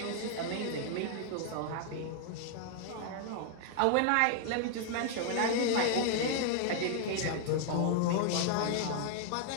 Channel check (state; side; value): different; both; correlation -0.01